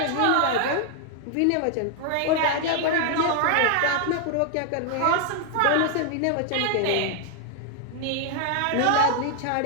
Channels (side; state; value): both; different; correlation 0.00